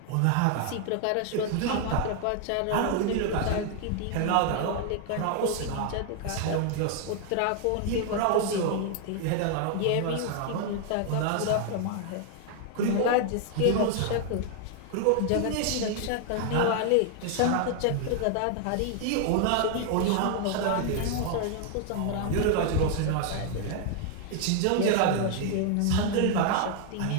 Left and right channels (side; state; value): both; different; correlation 0.00